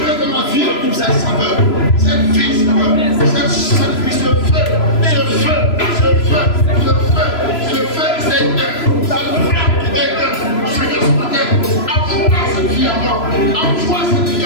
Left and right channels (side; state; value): right; late; 3.0 ms